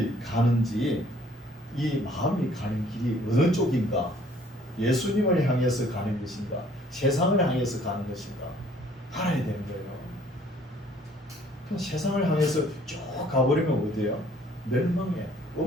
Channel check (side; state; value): both; normal; correlation 0.59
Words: 가는지 이 마음이 가는 길이 어느 쪽인가 예수님을 향해서 가는 것인가 세상을 향해서 가는 것인가 알아야 되는 거예요. 그럼 세상을 향해서 쭉 가버리면 어디예요? 멸망의